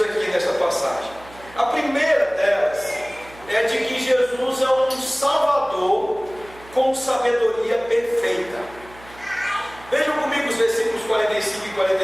aqui nessa passagem. A primeira delas é de que Jesus é um Salvador com sabedoria perfeita. Vejam comigo os versículos 45 e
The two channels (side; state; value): right; noise; hum, 21 dB below the sound